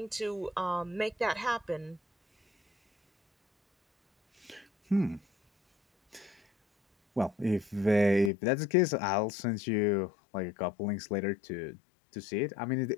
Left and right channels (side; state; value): right; drops out; at 8.3 s